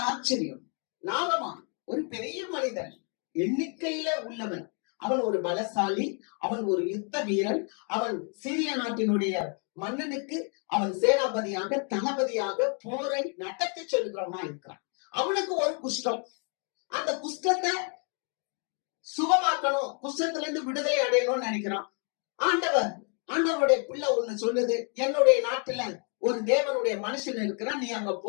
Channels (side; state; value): right; quieter; 39.6 dB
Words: ஆச்சரியம், நாகமான் ஒரு பெரிய மனிதன், எண்ணிக்கையில உள்ளவன், அவன் ஒரு பலசாலி, அவன் ஒரு யுத்த வீரன், அவன் சீரிய நாட்டினுடைய மன்னனுக்கு அவன் சேனாபதியாக தளபதியாக போரை நடத்தி சொல்லுகிறவனா இருக்கிறான். அவனுக்கு ஒரு குஷ்டம், அந்த குஷ்டத்தை சுகமாக்கணும், குஷ்டத்துல இருந்து விடுதலை அடையணும்னு நினைக்கிறான். ஆண்டவருடைய பிள்ளை ஒண்ணு சொல்லுது, என்னுடைய நாட்டுல ஒரு தேவனுடைய மனுஷன் இருக்கிறான், நீ அங்க